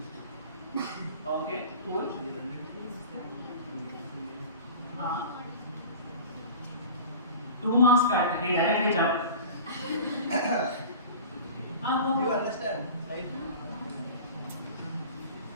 Okay, cool. 2 marks cut. He directly jumped. You understand, right?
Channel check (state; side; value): inverted; both; correlation -0.38